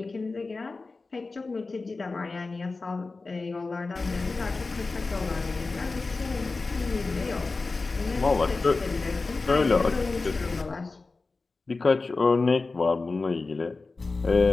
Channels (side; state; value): right; quieter; 3.8 dB